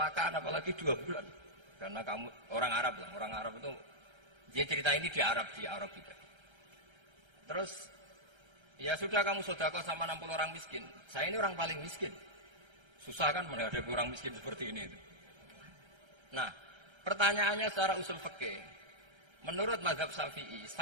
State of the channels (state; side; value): late; left; 1.3 ms